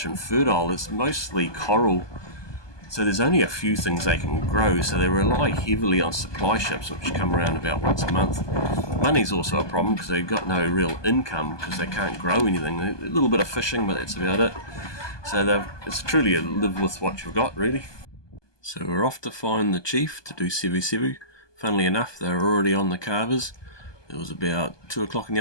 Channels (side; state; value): right; late; 1.2 ms